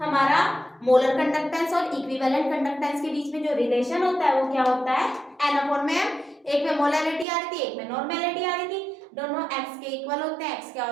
हमारा मोलर कंडक्टेंस और इक्विवेलेंट कंडक्टेंस के बीच में जो रिलेशन होता है वो क्या होता है, एन अपॉन में एम। एक में मोलैरिटी आ रही थी, एक में नॉर्मेलिटी आ रही थी, दोनों एक्स के इक्वल होते हैं। एक्स क्या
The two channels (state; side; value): drops out; left; at 7.2 s